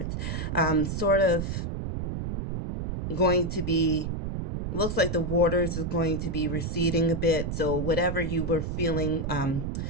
sort of going to be, looks like the waters is going to be receding a bit. So whatever you were feeling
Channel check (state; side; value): noise; right; rumble, 3 dB below the sound